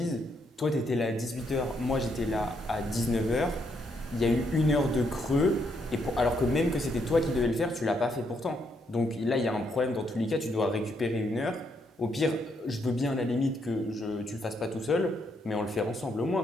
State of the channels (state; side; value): normal; both; correlation 0.76